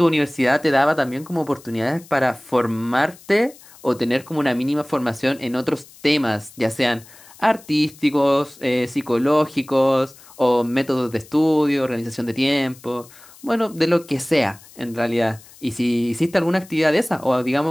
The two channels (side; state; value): left; noise; hiss, 23 dB below the sound